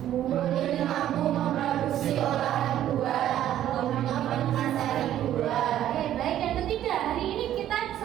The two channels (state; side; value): quieter; left; 11.9 dB